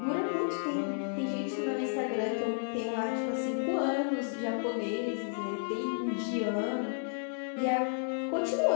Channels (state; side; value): silent; right; digital silence